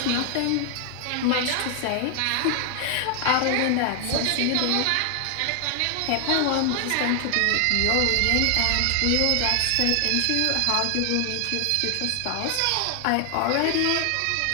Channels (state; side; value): different; both; correlation 0.00